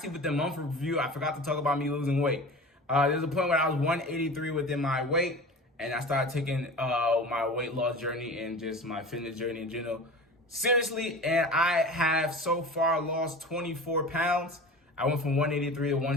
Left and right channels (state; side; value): normal; both; correlation 0.35